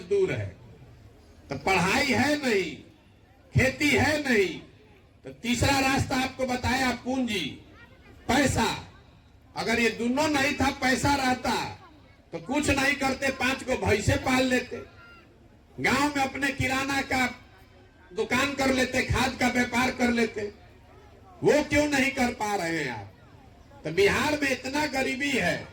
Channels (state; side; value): identical; both; correlation 1.00